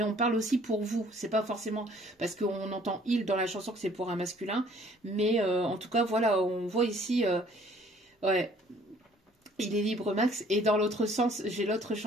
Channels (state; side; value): normal; both; correlation 0.58